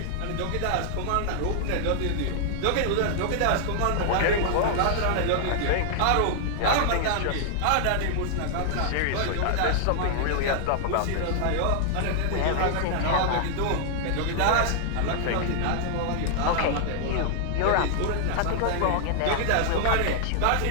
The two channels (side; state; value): both; different; correlation -0.01